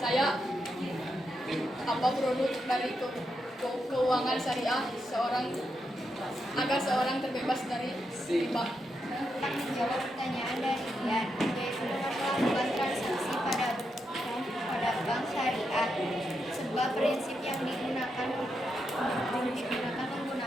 saya apa produk dari keuangan syariah agar seorang terbebas dari riba. Menjawab pertanyaan dari Ian, yaitu dengan melakukan transaksi pada bank syariah. Sebab prinsip yang digunakan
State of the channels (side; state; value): both; normal; correlation 0.84